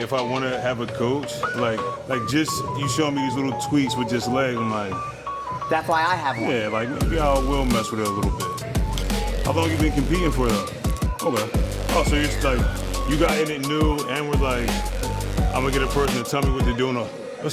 if I want to have a coach, like just you show me these little tweaks with just legs, I'm like, that's why I have one. Yeah, like maybe I will mess with it a little bit. How long you been competing for though? Okay. Oh, so you're just like, you got in it new and we're like, I'm gonna get a person to tell me what they're doing.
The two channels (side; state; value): both; identical; correlation 1.00